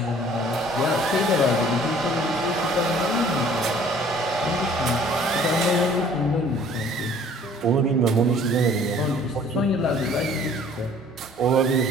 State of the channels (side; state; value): both; normal; correlation 0.54